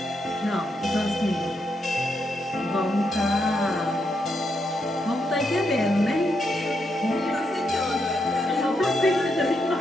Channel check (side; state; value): both; normal; correlation 0.81